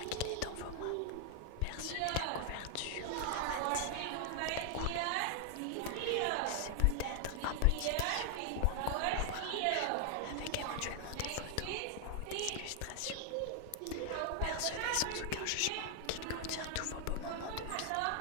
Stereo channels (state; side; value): different; both; correlation 0.00